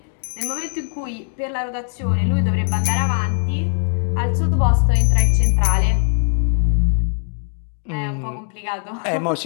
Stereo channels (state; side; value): silent; right; 57 dB below the other